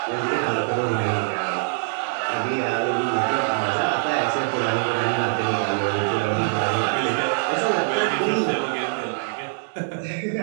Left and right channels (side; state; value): left; silent; digital silence